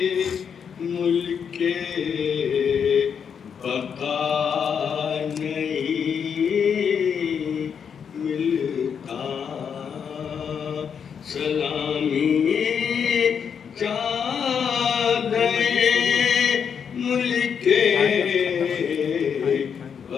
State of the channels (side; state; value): right; quieter; 7.2 dB